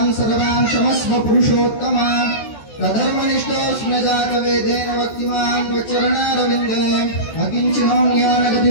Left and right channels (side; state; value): right; late; 14 ms